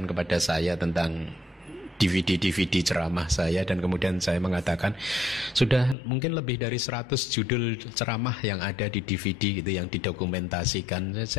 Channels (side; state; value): right; drops out; at 6.0 s